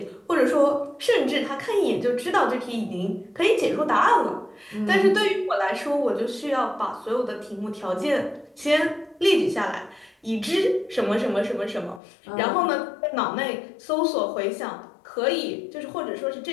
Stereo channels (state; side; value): drops out; right; at 12.0 s